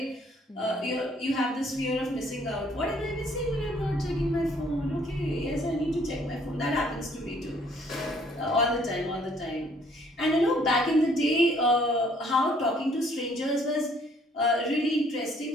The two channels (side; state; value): both; normal; correlation 0.62